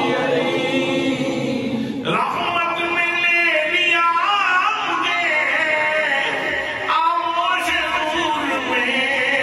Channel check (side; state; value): both; identical; correlation 1.00